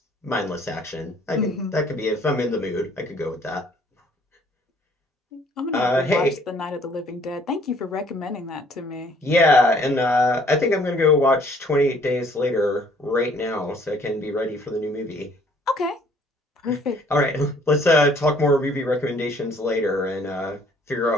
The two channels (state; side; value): normal; both; correlation 0.60